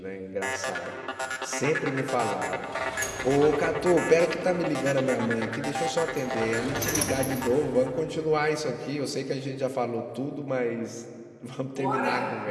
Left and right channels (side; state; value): both; identical; correlation 1.00